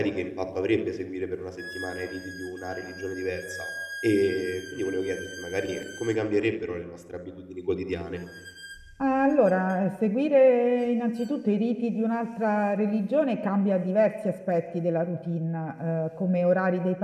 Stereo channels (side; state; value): both; identical; correlation 1.00